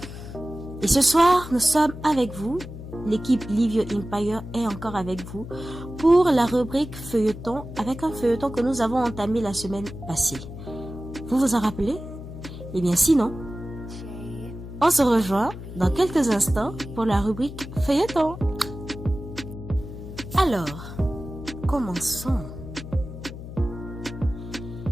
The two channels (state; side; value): noise; left; hum, 11 dB below the sound